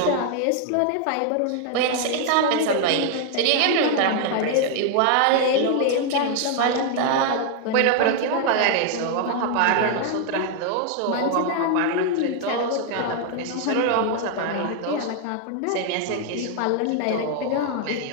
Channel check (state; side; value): different; both; correlation 0.00